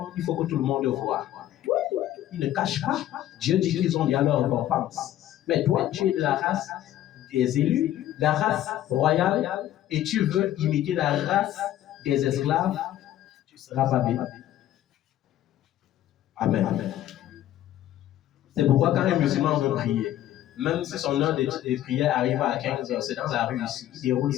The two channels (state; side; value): quieter; right; 12.8 dB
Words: il faut que tout le monde le voie. Ils ne cachent pas. Dieu dit qu'ils ont déjà leur récompense. Mais toi, tu es de la race des élus, la race royale, et tu veux imiter la race des esclaves, tu seras pas bien. Amen. C'est pourquoi quand un musulman veut prier, même si son heure de prière arrive à 15h, c'est dans la rue ici, il déroule